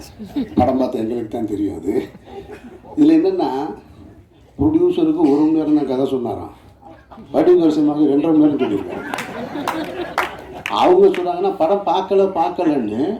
படம் பார்த்த எங்களுக்கு தான் தெரியும். அது இதில் என்னென்னா, ப்ரொடியூசருக்கு 1 மணி நேரம் தான் கதை சொன்னாராம், வடிவரசி அம்மாவுக்கு 2.5 மணி நேரம் சொல்லியிருக்காங்க. அவங்க சொல்கிறாங்கன்னா படம் பார்க்கலன்னு,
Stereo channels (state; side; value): identical; both; correlation 1.00